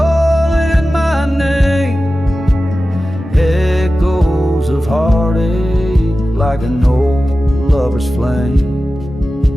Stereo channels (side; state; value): both; normal; correlation 0.95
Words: my name, echoes of heartache like an old lover's flame.